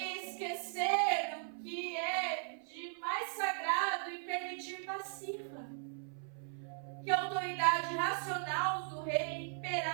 esquecer o que é de mais sagrado e permitir passiva que a autoridade racional do rei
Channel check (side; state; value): left; silent; 53 dB below the other